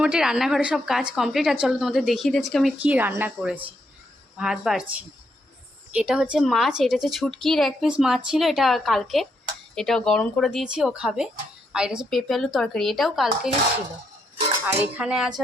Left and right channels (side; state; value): both; normal; correlation 0.78